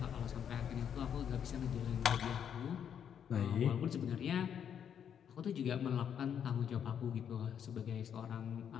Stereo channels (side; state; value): right; quieter; 8.4 dB